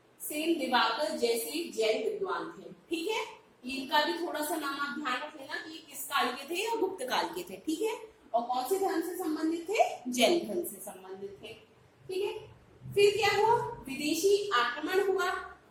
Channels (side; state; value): both; identical; correlation 1.00